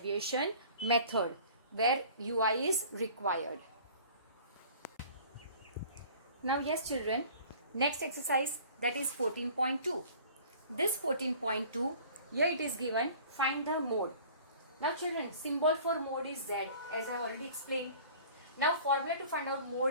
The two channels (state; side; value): inverted; both; correlation -0.47